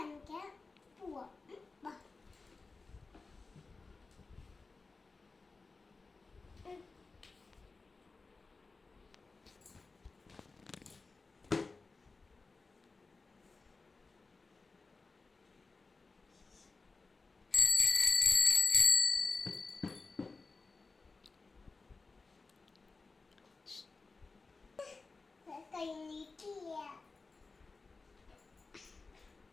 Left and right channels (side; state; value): right; quieter; 3.9 dB